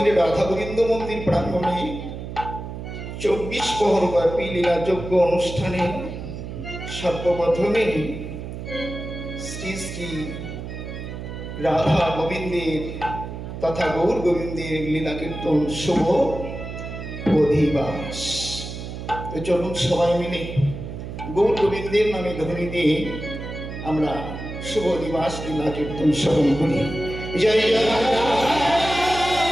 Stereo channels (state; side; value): noise; right; hum, 8 dB below the sound